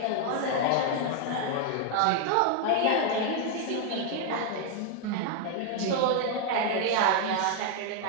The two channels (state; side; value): different; both; correlation 0.00